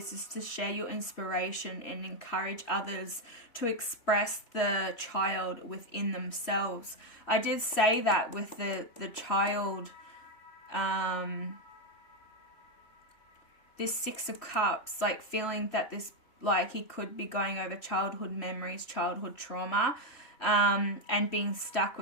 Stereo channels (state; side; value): late; right; 3.1 ms